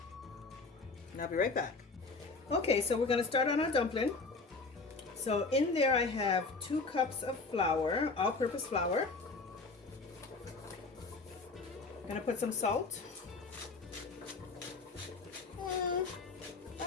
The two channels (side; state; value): right; quieter; 3.9 dB